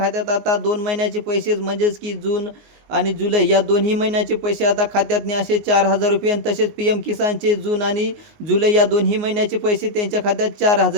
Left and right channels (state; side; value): late; left; 19 ms